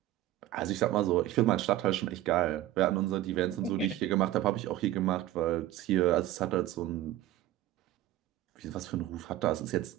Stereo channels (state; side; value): quieter; left; 14.2 dB